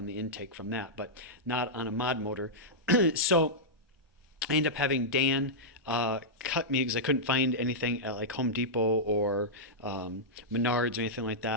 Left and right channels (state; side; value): normal; both; correlation -0.10